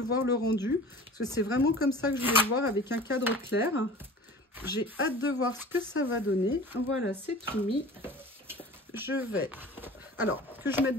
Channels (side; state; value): both; normal; correlation 0.40